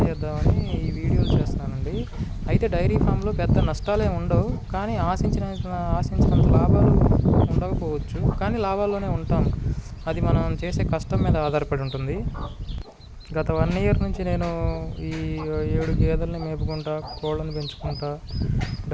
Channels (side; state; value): both; identical; correlation 1.00